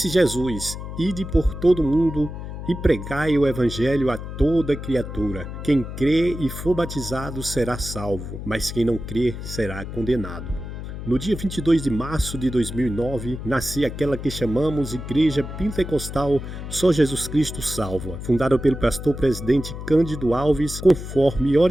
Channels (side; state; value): left; noise; hum, 8 dB below the sound